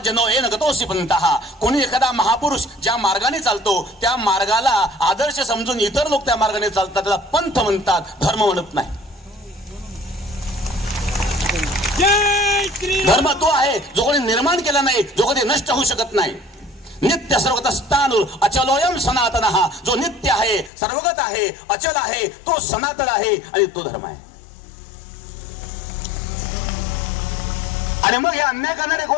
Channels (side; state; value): right; drops out; at 20.7 s